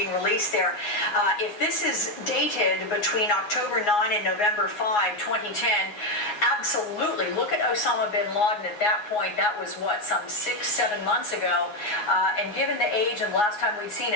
released there. If this is dated between October 9 and November 5, 2010, absolutely. Look at Osama bin Laden at that point. That was, what, some 6-7 months ago. And given the age and the last time we'd seen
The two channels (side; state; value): right; late; 9.6 ms